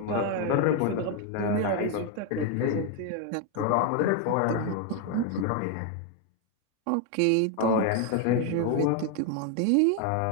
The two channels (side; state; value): both; different; correlation 0.01